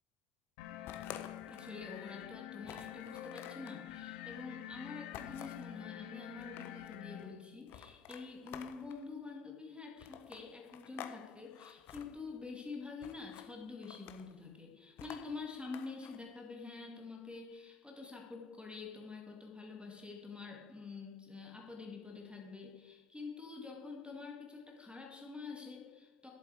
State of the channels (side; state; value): right; quieter; 5.3 dB